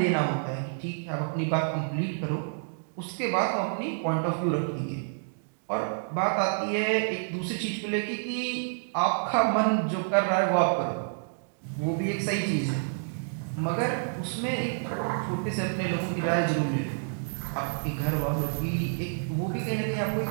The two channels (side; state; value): left; silent; digital silence